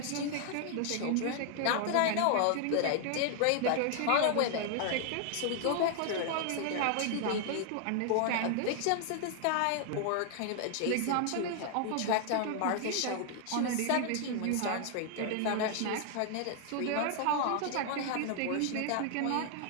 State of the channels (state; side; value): different; both; correlation 0.00